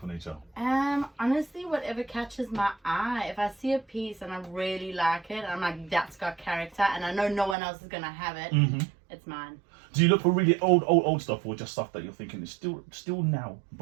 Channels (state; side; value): drops out; left; at 7.6 s